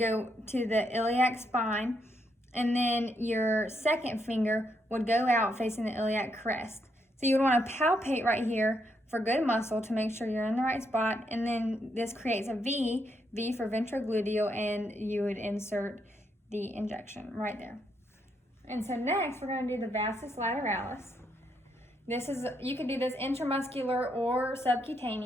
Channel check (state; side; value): normal; both; correlation 0.77